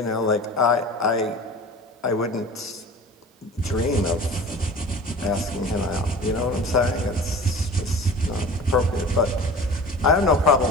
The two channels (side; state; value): both; normal; correlation 0.39